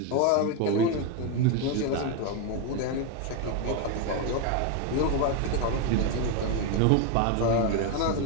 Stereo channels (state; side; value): different; both; correlation 0.02